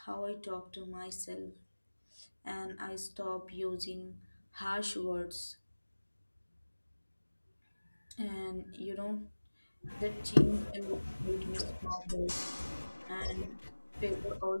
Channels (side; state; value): both; inverted; correlation -1.00